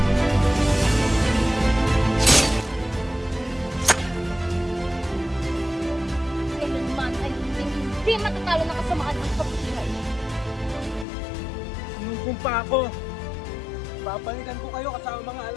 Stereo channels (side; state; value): right; drops out; at 11.1 s